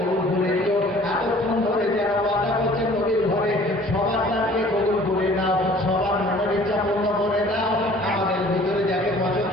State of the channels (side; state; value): both; normal; correlation 0.51